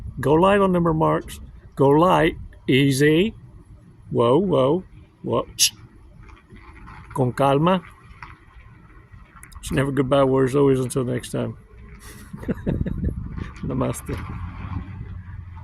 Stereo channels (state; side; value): identical; both; correlation 1.00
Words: Go light on them remarks. Go light. Easy. Whoa. Con calma. It's never goodbye words, always until next time. Namaste.